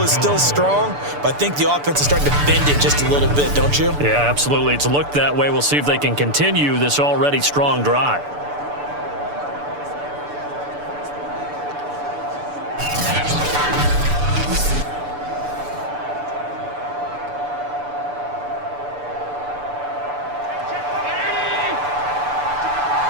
is still strong, but I think the offense is starting to bend it just a little bit, don't you? Yeah, absolutely. It's looked that way. We'll see if they can continue this already strong drive.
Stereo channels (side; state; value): left; late; 6.9 ms